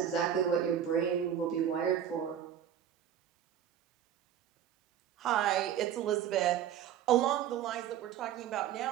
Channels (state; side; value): quieter; left; 9.6 dB